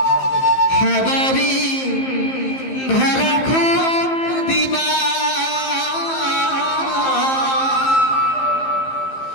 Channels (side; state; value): right; late; 15 ms